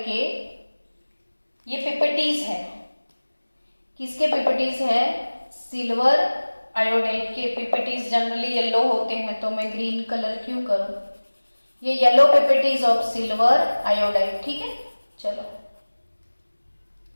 के ये पीपीटीज है। किसके पीपीटीज है, सिल्वर आयोडाइड के पीपीटीज जनरली येलो होते हैं, तो मैं ग्रीन कलर क्यों करूं, ये yellow PPTs of silver iodide, ठीक है। चलो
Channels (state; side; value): inverted; both; correlation -1.00